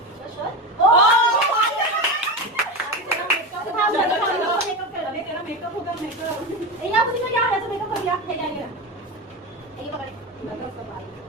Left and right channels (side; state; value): both; normal; correlation 0.20